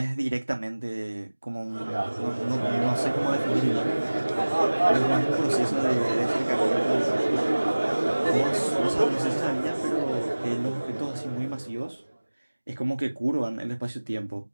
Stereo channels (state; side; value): inverted; both; correlation -1.00